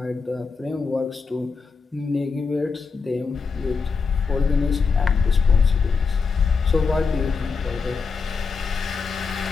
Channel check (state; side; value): quieter; right; 5.0 dB